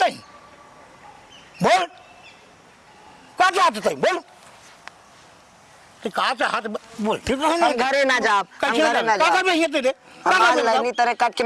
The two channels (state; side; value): identical; both; correlation 1.00